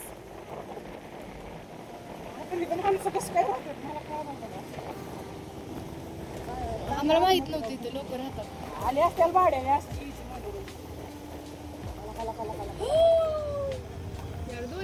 माणसं कसं काय राहतात मला काय माहिती. आम्हाला माहित नव्हतं इथे लोक राहतात. आले असतील भाड्याने असतील. यार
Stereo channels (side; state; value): both; identical; correlation 1.00